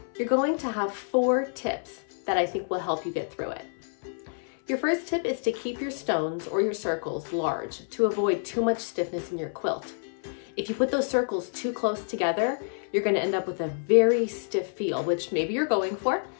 you're going to have 4 tips that I think will help you get through it. Your first tip is to keep your stones or your circles large to avoid too much stiffness in your quilt. If you put those circles too close together, you're going to end up with a very stiff feel, which maybe you're going for,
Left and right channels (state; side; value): silent; right; 59 dB below the other